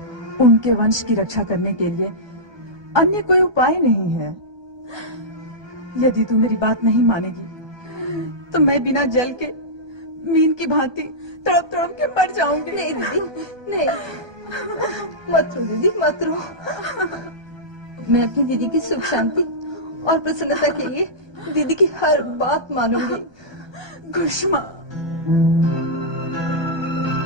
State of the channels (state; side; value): late; left; 1.2 ms